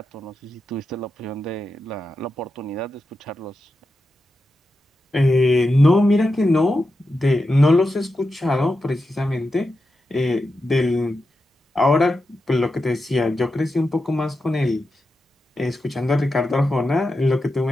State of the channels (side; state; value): both; normal; correlation 0.89